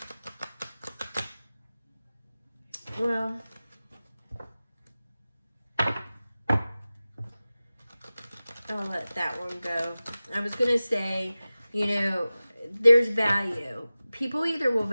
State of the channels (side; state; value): both; inverted; correlation -0.96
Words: I'll let that one go. I was going to say, there's value. People either will